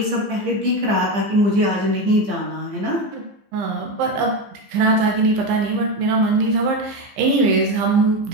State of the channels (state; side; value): late; left; 15 ms